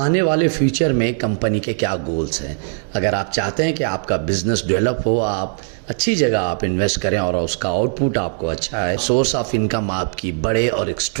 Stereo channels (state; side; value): silent; left; 66 dB below the other